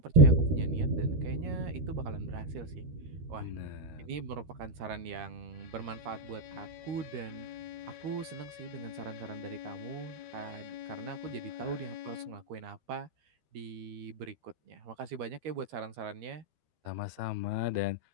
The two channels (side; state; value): left; late; 13 ms